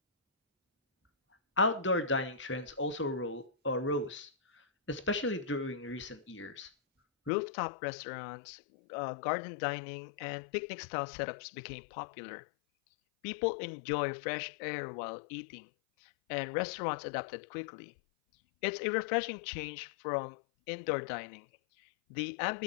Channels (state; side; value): drops out; right; at 7.3 s